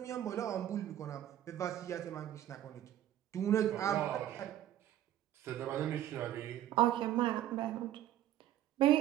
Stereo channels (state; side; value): quieter; left; 12.2 dB